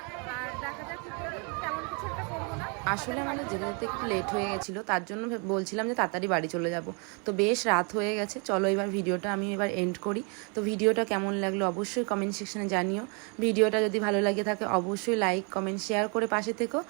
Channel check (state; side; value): quieter; left; 35.1 dB